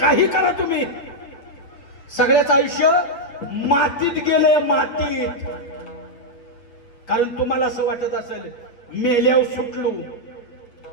करा तुम्ही, सगळ्याच आयुष्य मातीत गेलंय, मातीत. कारण तुम्हाला असं वाटत असेल मेल्यावर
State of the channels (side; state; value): right; late; 8.3 ms